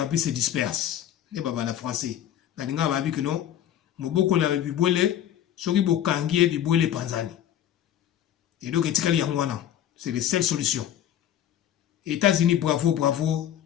se dispersent. Les babana français. Nalinga ba bi que non. Moboko la bibole, soki bokangi e bibole panzani. Et donc etikali yangwana, c'est les seules solutions. États-Unis bravo bravo,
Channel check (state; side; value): quieter; right; 10.9 dB